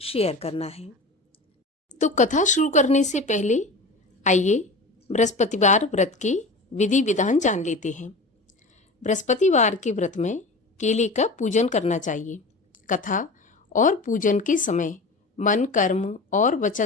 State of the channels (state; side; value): quieter; right; 3.0 dB